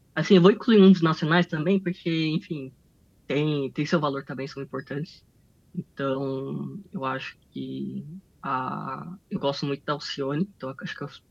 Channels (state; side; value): identical; both; correlation 1.00